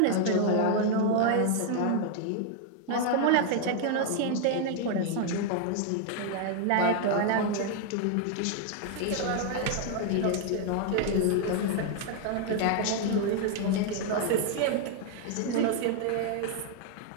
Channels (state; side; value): different; both; correlation 0.00